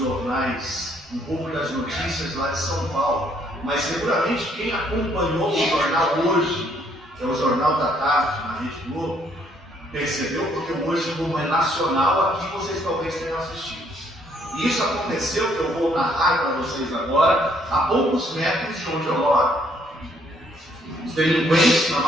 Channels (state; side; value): normal; both; correlation 0.67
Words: um pouco das notícias lá de São Paulo, mas seguramente quem acompanhou o jornal hoje, que é o Jornal da Tarde, na Rede Globo, percebeu, porque hoje, como é nacional, aqui vocês talvez tenham assistido. E isso aconteceu, que eu vou narrar para vocês agora, a poucos metros de onde eu moro. Os delinquentes, na